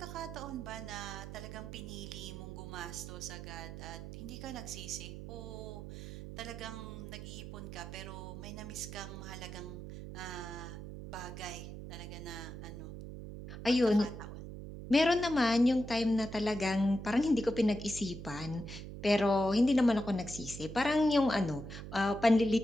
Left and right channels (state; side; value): noise; right; hum, 10 dB below the sound